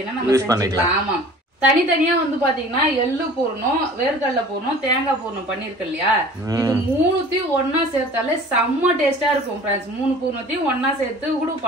நம்ம செஞ்சுக்கலாம். ஆமா, தனித்தனியா வந்து பாத்தீங்கன்னா எள்ளு பூர்ணம், வேர்க்கடலை பூர்ணம், தேங்காய் பூர்ணம் பண்ணிருக்கு இல்லையா, இது மூணுத்தையும் ஒன்னா சேர்த்தாலே செம்ம டேஸ்டா இருக்கும் ஃப்ரெண்ட்ஸ். 3 பூர்ணத்தையும் ஒன்னா சேர்த்து கூட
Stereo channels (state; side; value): normal; both; correlation 0.45